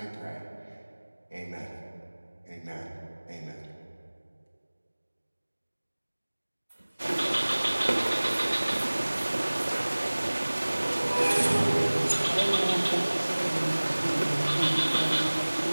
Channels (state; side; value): inverted; both; correlation -1.00